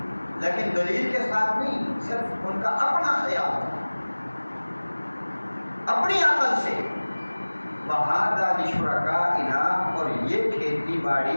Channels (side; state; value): both; inverted; correlation -1.00